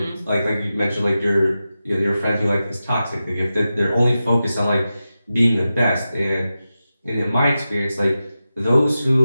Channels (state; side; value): inverted; both; correlation -0.93